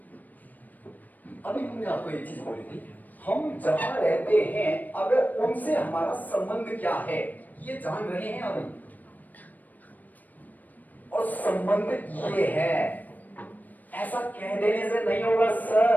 अभी हमने आपको एक चीज बोली थी, हम जहां रहते हैं अगर उनसे हमारा संबंध क्या है ये जान रहे हैं अभी, और संबंध ये है। ऐसा कह देने से नहीं होगा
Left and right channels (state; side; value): late; right; 0.084 ms